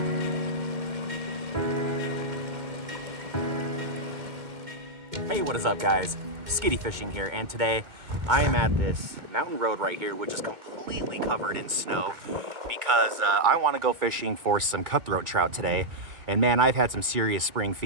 Hey, what is up, guys? Skiddy Fishing here, and today I am at this mountain road right here, which is completely covered in snow because I want to go fishing for some cutthroat trout today. And man, I've had some serious spring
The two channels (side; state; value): left; late; 2.1 ms